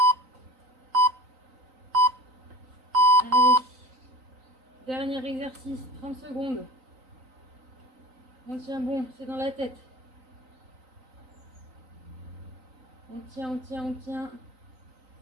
Allez. Dernier exercice, 30 secondes. On tient bon, c'est dans la tête. On tient, on tient, on tient.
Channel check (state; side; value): late; left; 3.9 ms